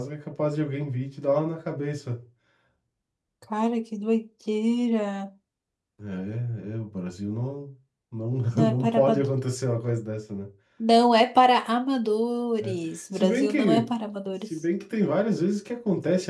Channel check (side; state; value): both; identical; correlation 1.00